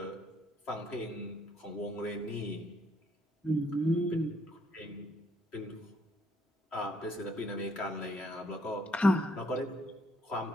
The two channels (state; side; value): normal; both; correlation 0.69